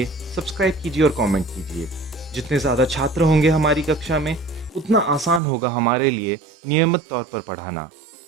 सब्सक्राइब कीजिए और कमेंट कीजिए। जितने ज़्यादा छात्र होंगे हमारी कक्षा में, उतना आसान होगा हमारे लिए नियमित तौर पर पढ़ाना।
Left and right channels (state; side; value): drops out; left; at 5.4 s